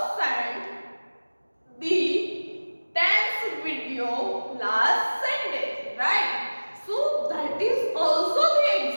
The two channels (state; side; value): inverted; both; correlation -1.00